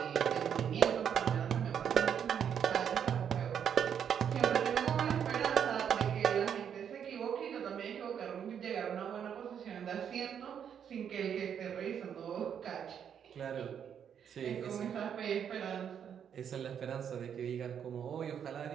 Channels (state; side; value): quieter; left; 8.3 dB